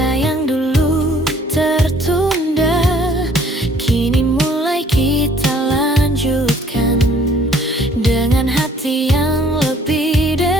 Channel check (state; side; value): normal; both; correlation 0.58